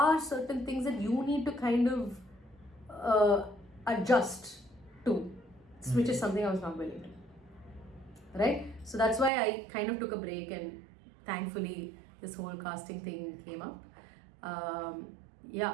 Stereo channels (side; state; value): left; drops out; at 9.3 s